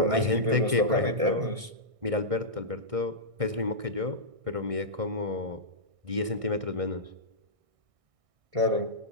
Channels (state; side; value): late; left; 1.6 ms